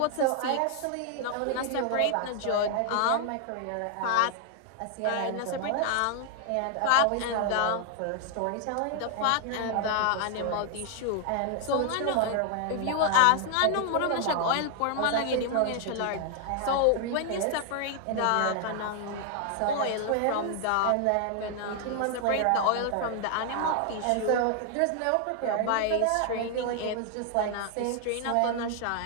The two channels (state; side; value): different; both; correlation 0.00